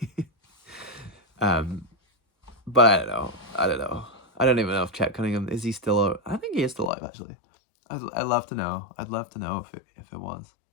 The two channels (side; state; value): right; drops out; at 6.9 s